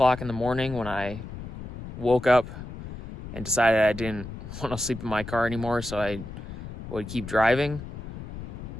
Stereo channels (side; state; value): left; noise; rumble, 10 dB below the sound